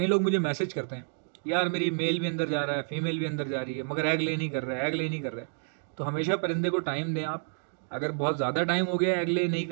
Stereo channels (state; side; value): silent; left; digital silence